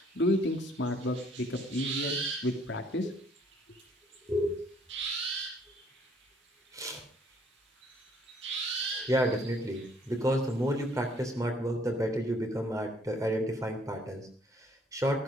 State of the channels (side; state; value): both; normal; correlation 0.63